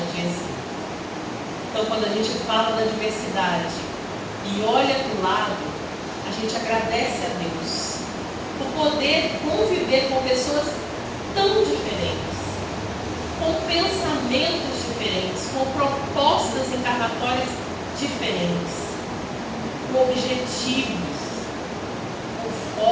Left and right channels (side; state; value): both; identical; correlation 1.00